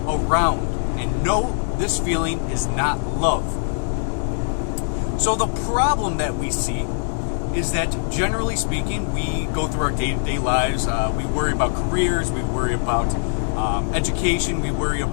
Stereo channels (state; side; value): silent; right; digital silence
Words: around. And no, this feeling is not love. So the problem that we see is that, generally speaking, we go through our day-to-day lives, we worry about careers, we worry about education, we worry